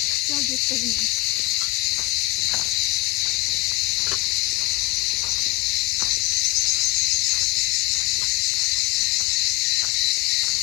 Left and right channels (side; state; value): right; quieter; 20.2 dB